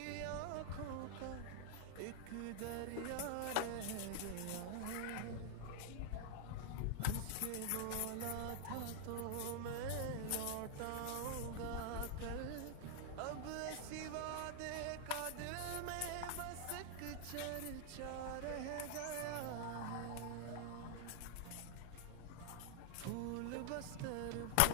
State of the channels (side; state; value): both; different; correlation 0.00